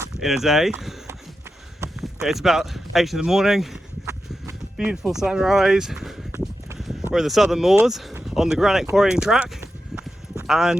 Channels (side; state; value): both; normal; correlation 0.89